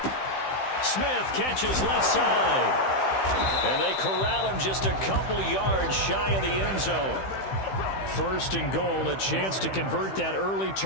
Smith catches left side. And they corral him just a couple yards shy of the end zone. 1st and goal, a chance to convert that early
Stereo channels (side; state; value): right; late; 15 ms